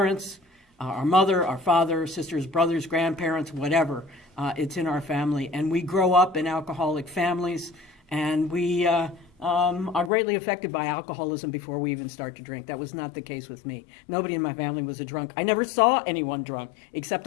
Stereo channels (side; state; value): right; drops out; at 10.1 s